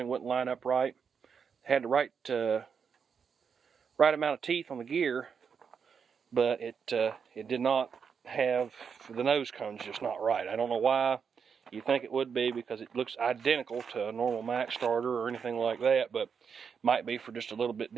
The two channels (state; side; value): quieter; left; 6.5 dB